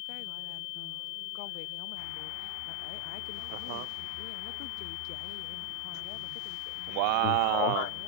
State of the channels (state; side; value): different; both; correlation 0.01